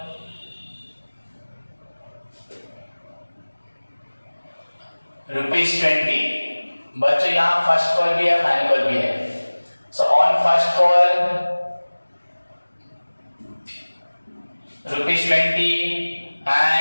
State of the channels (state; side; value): inverted; both; correlation -1.00